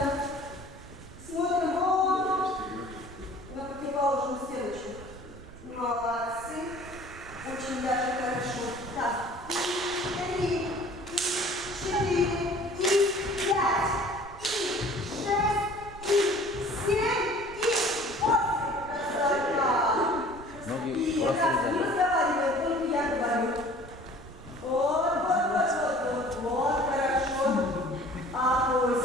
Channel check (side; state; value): right; noise; rumble, 18 dB below the sound